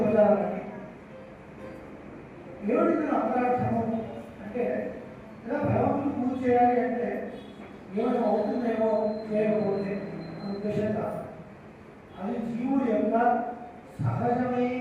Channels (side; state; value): both; identical; correlation 1.00